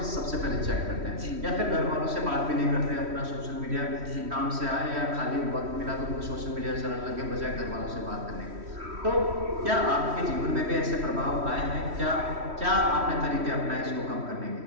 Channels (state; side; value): late; left; 3.1 ms